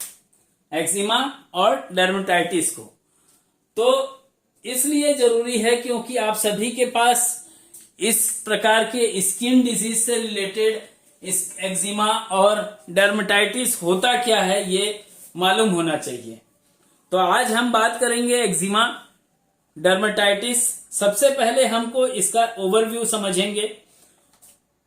एक्जिमा और डर्मेटाइटिस को। तो इसलिए जरूरी है क्योंकि आप सभी के पास इस प्रकार के स्किन डिजीज से रिलेटेड इस एक्जिमा और डर्मेटाइटिस होता क्या है ये मालूम होना चाहिए। तो आज हम बात करेंगे एक्जिमा, डर्मेटाइटिस। सबसे पहले हमको इसका ओवरव्यू समझेंगे।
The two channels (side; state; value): both; identical; correlation 1.00